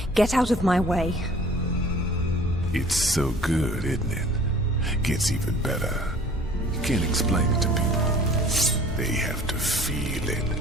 Get out of my way. It's so good, isn't it? Gets even better. You can't explain it to people. They have to feel it.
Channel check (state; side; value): normal; both; correlation 0.50